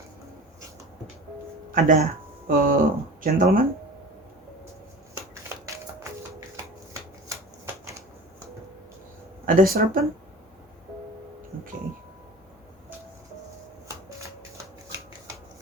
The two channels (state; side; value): normal; both; correlation 0.38